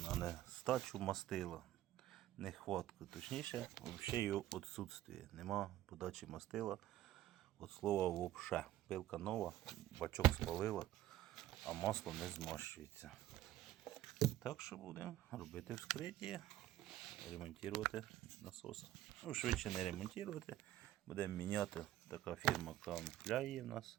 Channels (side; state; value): left; quieter; 13.9 dB